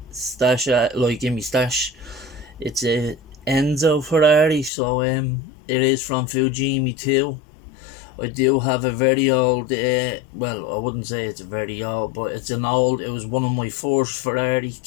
stash, in my stash. It's a Enzo Ferrari, so it is from Fujimi too. I do have a very old, well, I wouldn't say it's very old, but it was one of my first Ferrari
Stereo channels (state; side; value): drops out; right; at 4.7 s